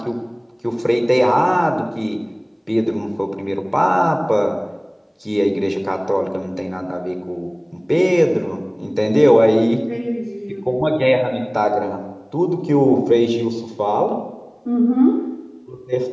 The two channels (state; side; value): identical; both; correlation 1.00